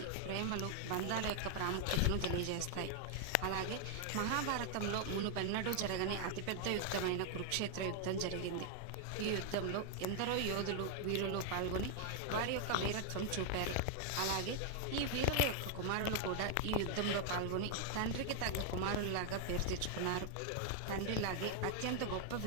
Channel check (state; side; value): different; both; correlation 0.00